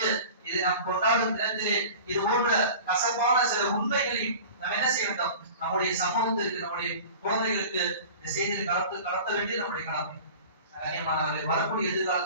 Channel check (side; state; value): both; inverted; correlation -0.39